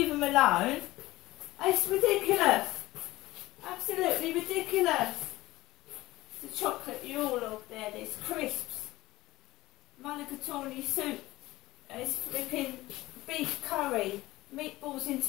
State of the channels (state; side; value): quieter; right; 18.1 dB